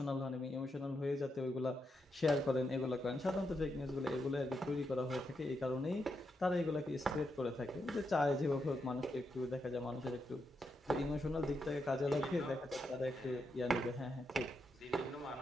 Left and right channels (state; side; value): normal; both; correlation 0.83